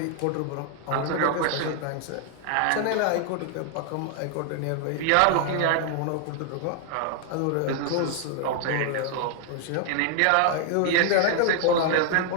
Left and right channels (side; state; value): both; different; correlation 0.00